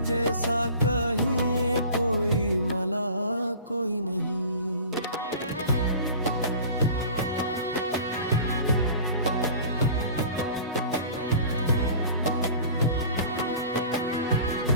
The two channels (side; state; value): both; inverted; correlation -0.42